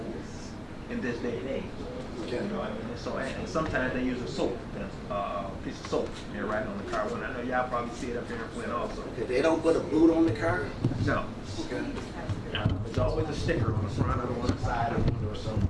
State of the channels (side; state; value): both; identical; correlation 1.00